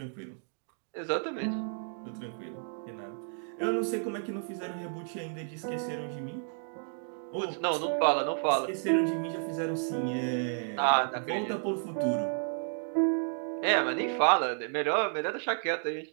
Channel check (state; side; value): silent; left; 57 dB below the other